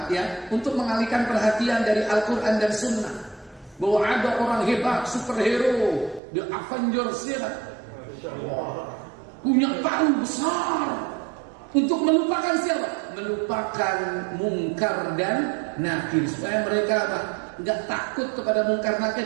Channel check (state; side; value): drops out; left; at 6.2 s